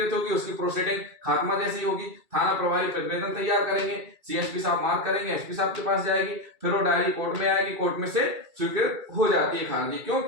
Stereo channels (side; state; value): left; late; 2.3 ms